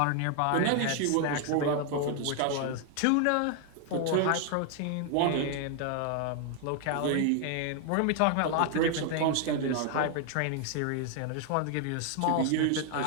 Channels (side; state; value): both; different; correlation 0.00